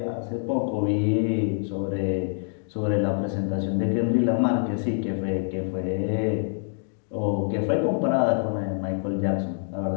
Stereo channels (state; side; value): silent; right; digital silence